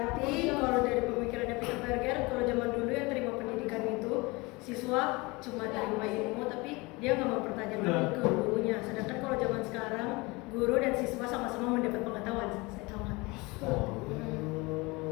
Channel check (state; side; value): quieter; right; 24.6 dB